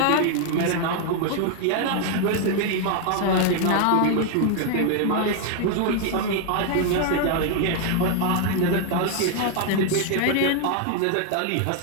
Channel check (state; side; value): different; both; correlation 0.00